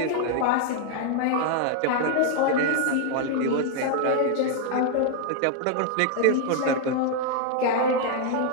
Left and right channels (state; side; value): different; both; correlation 0.00